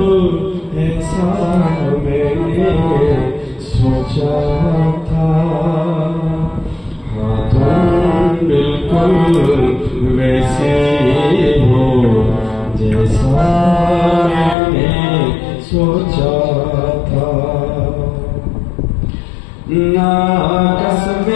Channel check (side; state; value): right; drops out; at 14.6 s